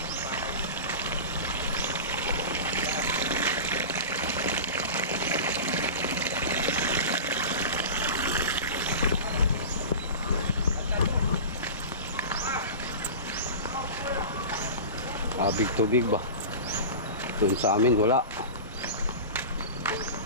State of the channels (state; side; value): inverted; both; correlation -0.31